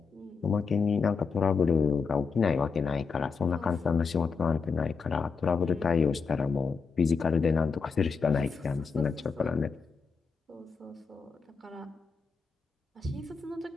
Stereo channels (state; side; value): quieter; right; 5.2 dB